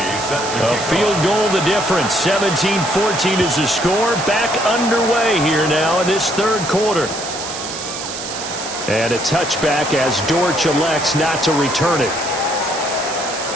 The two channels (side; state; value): right; noise; hiss, 8 dB below the sound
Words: A field goal the difference. 17-14 is the score. Back underway here now in this third quarter. And a touchback as Dortch elects not to return it.